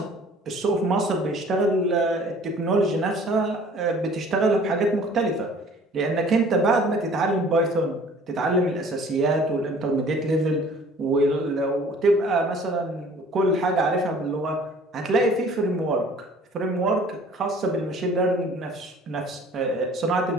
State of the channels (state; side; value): normal; both; correlation 0.51